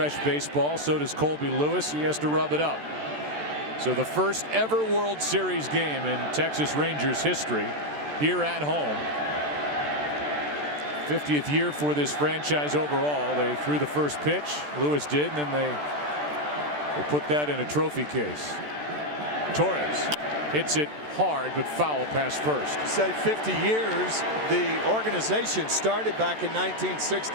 baseball. So does Colby Lewis. He has to rub it up. So the first ever World Series game in Texas Rangers history here at home. 50th year for this franchise overall. They threw the first pitch. Lewis did, and then they put that in a trophy case. Torres hits it hard, but foul past first. Say 50 years. The organization started back in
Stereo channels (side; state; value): left; late; 14 ms